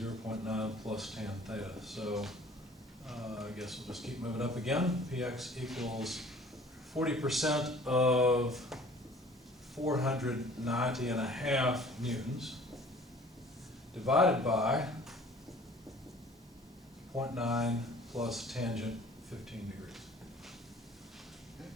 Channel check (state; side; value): normal; both; correlation 0.50